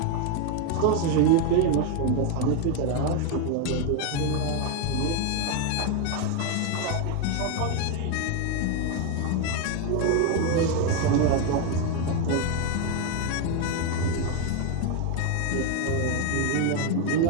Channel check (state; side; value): different; both; correlation 0.01